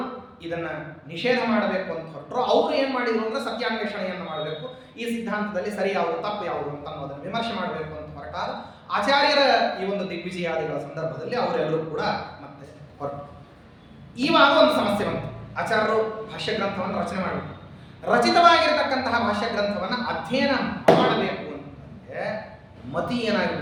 ಇದನ್ನ ನಿಷೇಧ ಮಾಡಬೇಕು ಅಂತ ಹೊರಟರು, ಅವ್ರು ಏನ್ ಮಾಡಿದ್ರು ಅಂದ್ರೆ ಸತ್ಯಾನ್ವೇಷಣೆಯನ್ನು ಮಾಡಬೇಕು, ಈ ಸಿದ್ಧಾಂತದಲ್ಲಿ ಸರಿ ಯಾವುದು ತಪ್ಪು ಯಾವುದು ಅಂತ ಅನ್ನೋದನ್ನು ವಿಮರ್ಶೆ ಮಾಡಬೇಕು ಅಂತ ಹೊರಟಾಗ ಆಚಾರ್ಯರ ಈ ಒಂದು ದಿಗ್ವಿಜಯಾದಿಗಳ ಸಂದರ್ಭದಲ್ಲಿ ಅವರೆಲ್ಲರೂ ಕೂಡ ಮತ್ತೆ ಹೊರಟು. ಇವಾಗ ಒಂದು ಸಮಸ್ಯೆ ಬಂತು. ಆಚಾರ್ಯರು ಭಾಷ್ಯ ಗ್ರಂಥವನ್ನು ರಚನೆ ಮಾಡಬೇಕು, ರಚಿತವಾಗಿರತಕ್ಕಂತಹ ಭಾಷ್ಯ ಗ್ರಂಥವನ್ನು ಅಧ್ಯಯನ ಮಾಡಬೇಕು ಅಂತಂದ್ರೆ ಮತಿ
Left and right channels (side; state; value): both; identical; correlation 1.00